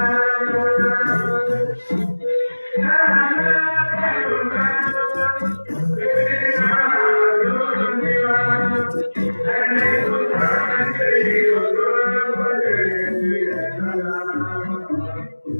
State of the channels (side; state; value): both; inverted; correlation -1.00